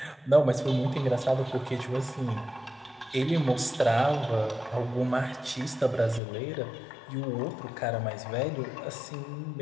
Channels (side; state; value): right; drops out; at 6.2 s